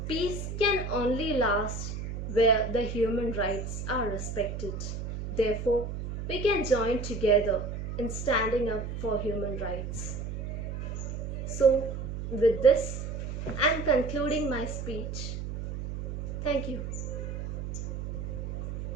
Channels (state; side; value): noise; right; hum, 5 dB below the sound